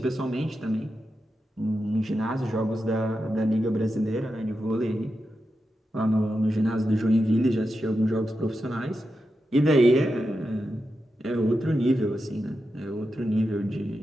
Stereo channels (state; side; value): normal; both; correlation 0.89